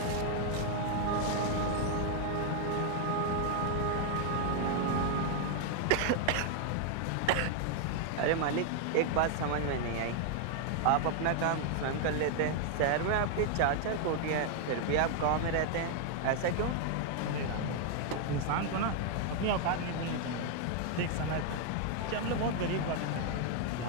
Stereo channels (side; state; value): both; different; correlation 0.00